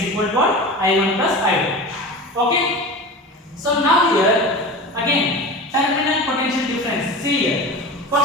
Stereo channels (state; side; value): normal; both; correlation 0.31